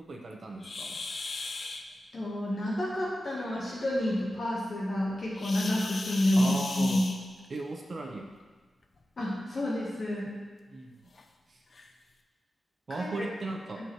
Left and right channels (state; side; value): normal; both; correlation 0.93